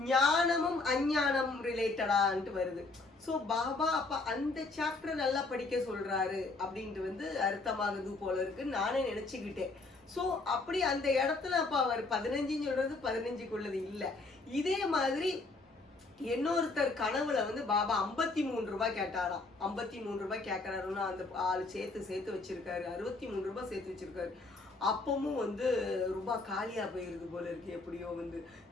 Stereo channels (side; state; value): right; quieter; 3.5 dB